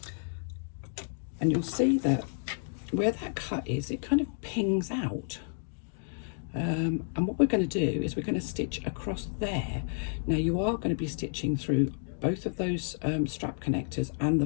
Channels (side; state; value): right; silent; digital silence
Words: and you'll see that where that cut is, it kind of pings out. And what we're going to do is we're going to stitch across there. Now you are going to be stitching through both of those strap connectors and